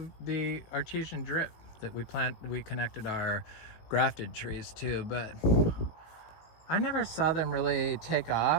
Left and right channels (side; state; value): right; late; 18 ms